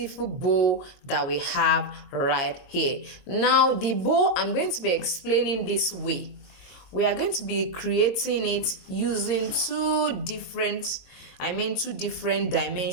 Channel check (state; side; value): late; right; 22 ms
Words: bow that we have right here. Now the bow, I'm going to be explaining this way. We are going to be creating it using two different